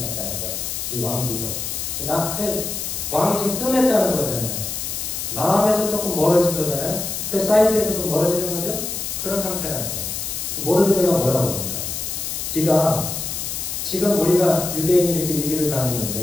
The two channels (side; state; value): left; noise; hiss, 4 dB below the sound